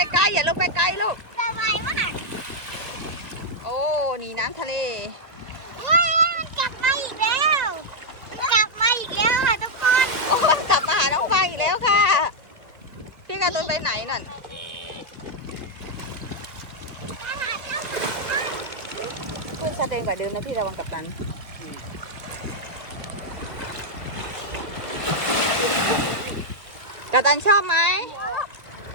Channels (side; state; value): left; late; 1.7 ms